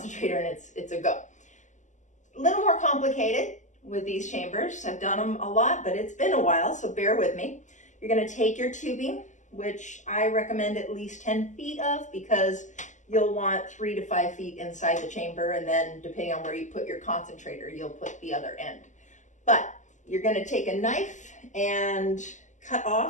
and it's a go. A little more complicated with these chambers. I've done them a lot, but it's been a while, so bear with me. You're going to take your tubing, which I recommend at least 10 feet of, because you'll want 3 to 5 feet inside the chamber, and then depending on where you put your concentrator, you'll put the other end. But you're going to take a knife and cut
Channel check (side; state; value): right; late; 0.35 ms